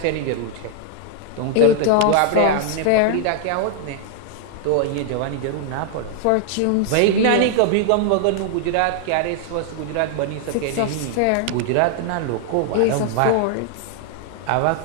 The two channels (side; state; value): both; different; correlation 0.00